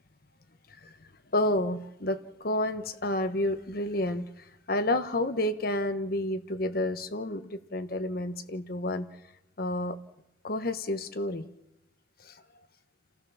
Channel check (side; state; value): both; normal; correlation 0.10